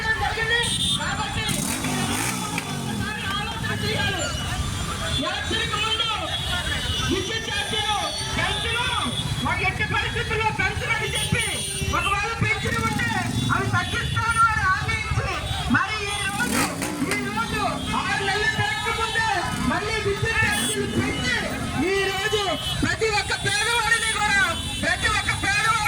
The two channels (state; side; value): identical; both; correlation 1.00